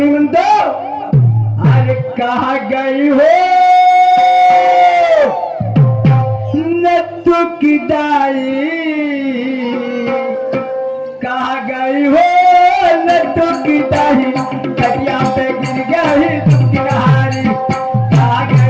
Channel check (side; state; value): both; identical; correlation 1.00